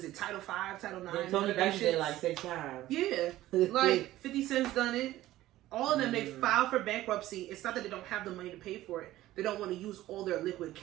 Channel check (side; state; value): left; quieter; 15.3 dB